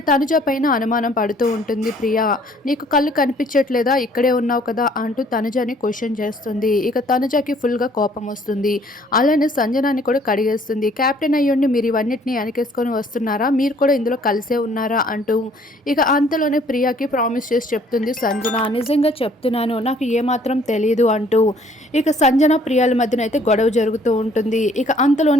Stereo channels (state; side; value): normal; both; correlation 0.60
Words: తనుజ పైన అనుమానం పడుతూ ఉంటుంది ప్రియ. నీకు కళ్ళు కనిపించట్లేదా, ఇక్కడే ఉన్నావు కదా అంటూ తనుజని క్వశ్చన్ చేస్తుంది. ఇక తనుజకి ఫుల్గా కోపం వస్తుంది. అలానే సంజనాన్ని కూడా కడిగేస్తుంది. కెప్టెన్ అయ్యుండి మీరు ఇవన్నిటిని వెనకేసుకొని వస్తున్నారా, మీరు కూడా ఇందులో కలిసే ఉన్నారా అంటూ ఇక అంతలోనే ప్రియకి ప్రామిస్ చేసి చెప్తుంది సంజన. నిజంగా చెప్తున్నాను, నాకు ఏమాత్రం తెలియదు అంటూ ఇక సంజన ప్రియాల మధ్యన అయితే గొడవ జరుగుతూ ఉంటుంది. ఇక